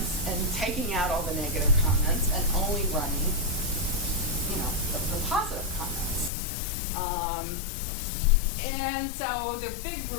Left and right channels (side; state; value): right; drops out; at 6.3 s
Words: and taking out all the negative comments and only running, the positive comments. And so the big